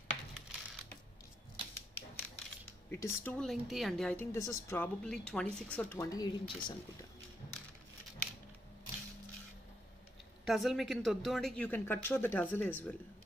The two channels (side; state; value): both; normal; correlation 0.78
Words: It is too lengthy అండి. I think this is probably 26 or 28 inches అనుకుంటా. టజల్ మీకు ఇంత వద్దు అంటే you can cut short the tassel as well.